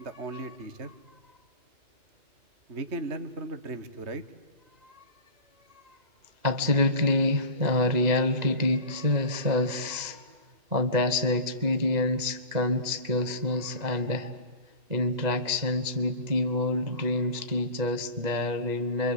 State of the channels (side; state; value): left; late; 2.0 ms